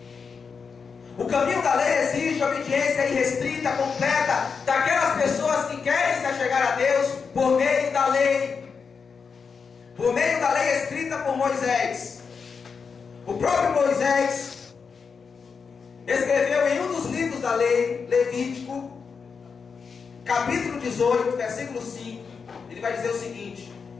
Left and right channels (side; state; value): right; quieter; 5.6 dB